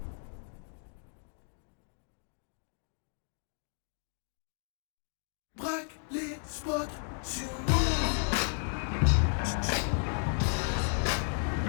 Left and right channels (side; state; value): right; silent; 55 dB below the other